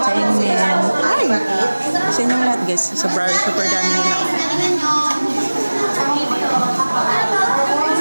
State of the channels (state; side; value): inverted; both; correlation -1.00